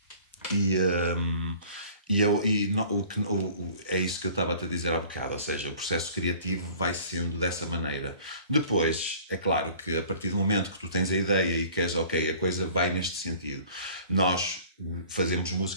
É isso que eu estava a te dizer há bocado, ou seja, o processo criativo vai sendo dessa maneira. Depois, é claro que a partir do momento que tu tens a ideia e queres, ok, a coisa vai neste sentido, nós fazemos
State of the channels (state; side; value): inverted; both; correlation -0.49